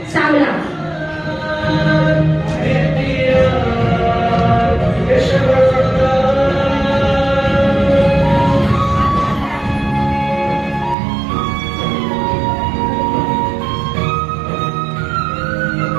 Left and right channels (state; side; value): drops out; left; at 11.0 s